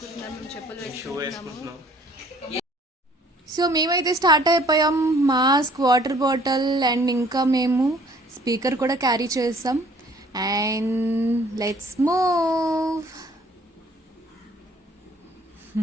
మేము చెప్పులు వేసుకుంటున్నాము. సో మేమైతే స్టార్ట్ అయిపోయాం. మాస్క్, వాటర్ బాటిల్ అండ్ ఇంకా మేము స్పీకర్ కూడా క్యారీ చేసాం. And let's move.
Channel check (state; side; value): normal; both; correlation 0.57